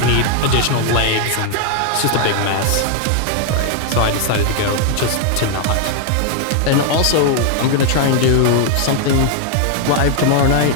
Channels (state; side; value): different; both; correlation 0.00